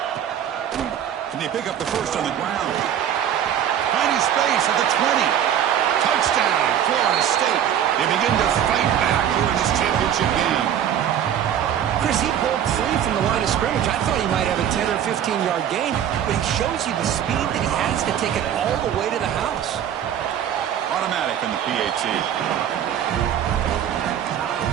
Can they pick up the first on the ground? Finding space at the 20. Touchdown, Florida State. They begin to fight back here in this championship game. Chris, he broke free from the line of scrimmage. I thought he might have a 10 or 15-yard gain, but he shows you the speed that he has to take it all the way to the house. Automatic in the PAT.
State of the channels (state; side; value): quieter; left; 9.8 dB